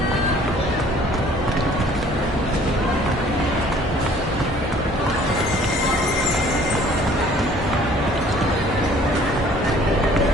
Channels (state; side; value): normal; both; correlation 0.55